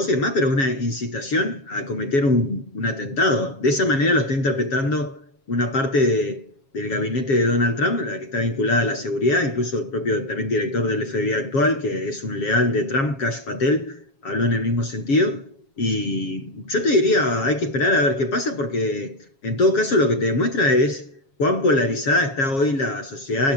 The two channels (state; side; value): late; right; 7.3 ms